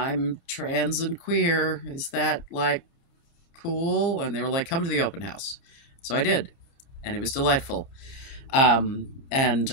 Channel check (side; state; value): right; late; 29 ms